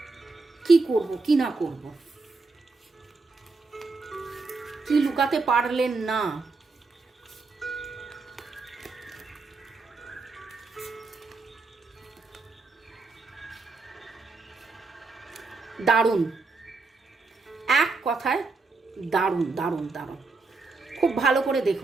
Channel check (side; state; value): left; quieter; 3.9 dB